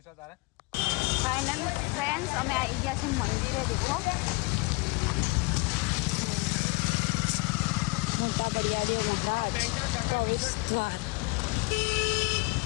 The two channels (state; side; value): quieter; right; 27.3 dB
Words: ફાઇનલ ફ્રેન્ડ્સ અમે આવી ગયા છે મંદિરે દેખો